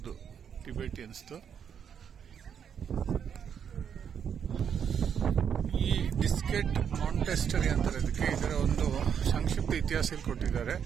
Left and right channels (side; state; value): left; quieter; 7.8 dB